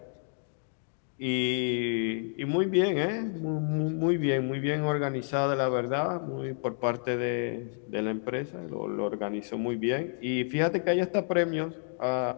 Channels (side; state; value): right; silent; digital silence